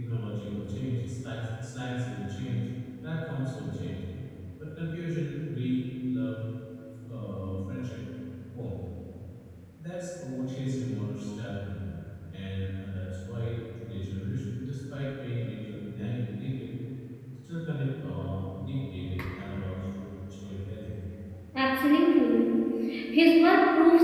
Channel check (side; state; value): both; identical; correlation 1.00